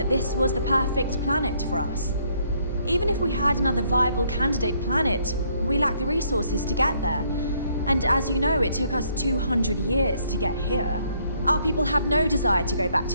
this was the perfect planet for us. Even if we had another viable candidate planet, we lack the resources to get there. And as you know, it took us 200 years to get here. Our people have no desire to go back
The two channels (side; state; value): both; inverted; correlation -0.68